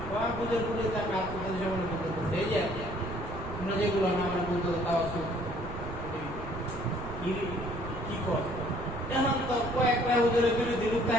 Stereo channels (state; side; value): noise; right; rumble, 10 dB below the sound